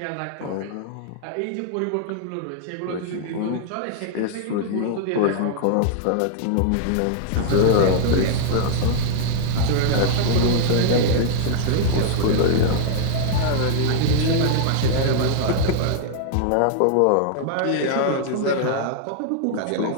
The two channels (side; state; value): both; different; correlation -0.01